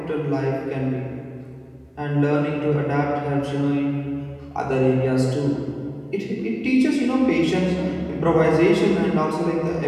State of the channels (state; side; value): identical; both; correlation 1.00